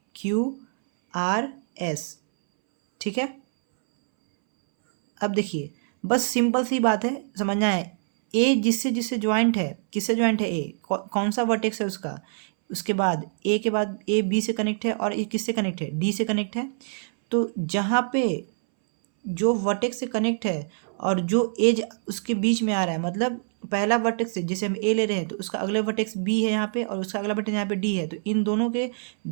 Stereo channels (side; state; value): left; silent; 62 dB below the other